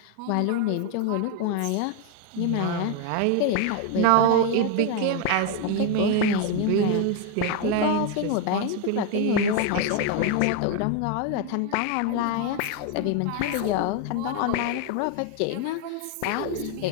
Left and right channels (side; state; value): both; different; correlation 0.01